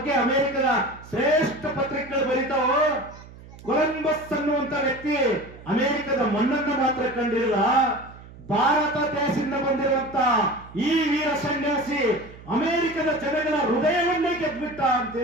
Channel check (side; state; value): right; noise; hum, 19 dB below the sound